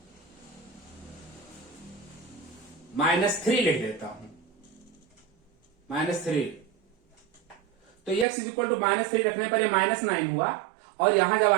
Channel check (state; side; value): drops out; left; at 8.2 s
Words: -3 लिख देता हूं, -3, तो x इज इक्वल टू -3 रखने पर ये -9 हुआ, और यहां जब